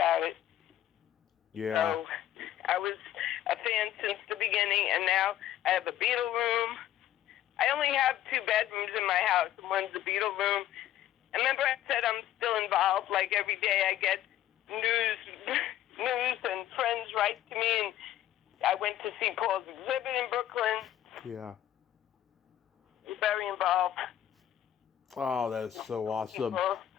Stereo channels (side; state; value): right; quieter; 12.3 dB